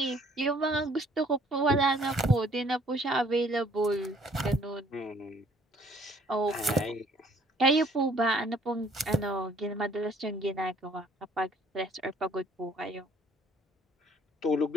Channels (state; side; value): normal; both; correlation 0.60